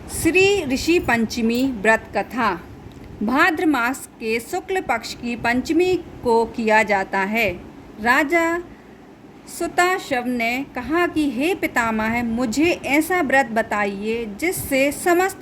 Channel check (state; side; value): identical; both; correlation 1.00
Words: श्री ऋषि पंचमी व्रत कथा। भाद्र मास के शुक्ल पक्ष की पंचमी को किया जाता है। राजा सुताशव ने कहा कि हे पितामह, मुझे ऐसा व्रत बताइए जिससे